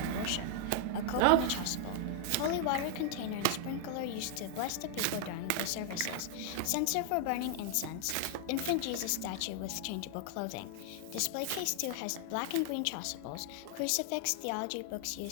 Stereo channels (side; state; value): both; different; correlation 0.00